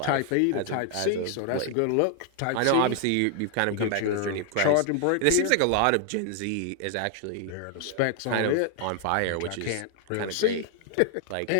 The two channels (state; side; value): different; both; correlation 0.00